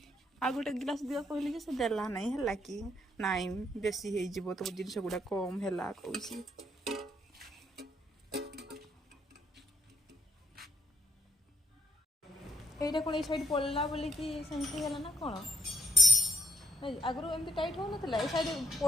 आ गोटे गिलास दिया कहली से देला नहीं है कि नाई बेसी हो तो जिन गुड़ा कम है कौन এইটা কোন এই সাইড পড়লা বলি কি সেমতি হলা না কোন আগরু এমতি টাইট हो नथला এই সাইড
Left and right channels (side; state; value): both; normal; correlation 0.71